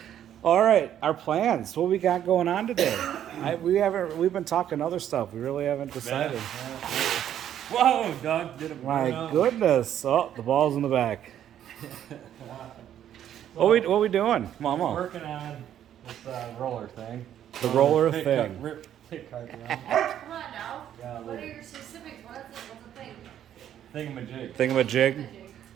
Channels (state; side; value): quieter; left; 10.6 dB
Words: All right, our plans. What we got going on today? We've been talking other stuff. We really haven't decided. Whoa, Doug did it. My goodness. Oh, the ball's in the back. What we doing, Mama? Working on this roller thing. The roller Pit thing. Rip pit cart around. Come on now. Yeah, What are your specifics? What's the thing? Thingamajig. Thingamajig?